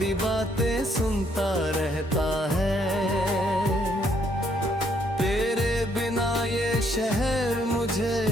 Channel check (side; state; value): both; normal; correlation 0.70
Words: बातें सुनता रहता है। तेरे बिना ये शहर मुझे